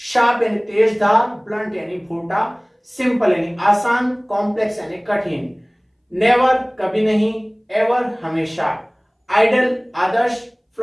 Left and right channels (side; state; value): both; identical; correlation 1.00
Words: शार्प यानी तेज धार, ब्लंट यानी भूटा, सिंपल यानी आसान, कॉम्प्लेक्स यानी कठिन, नेवर कभी नहीं, एवर हमेशा, आइडल आदर्श,